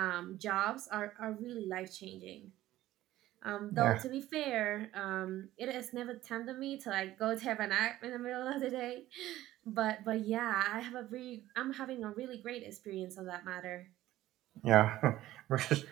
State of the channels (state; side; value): quieter; left; 15.0 dB